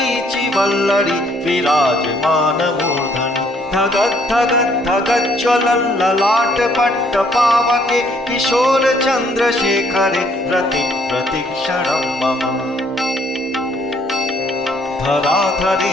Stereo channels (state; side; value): normal; both; correlation 0.65